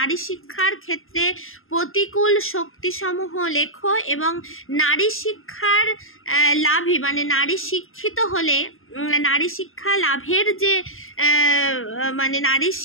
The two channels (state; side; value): late; right; 0.60 ms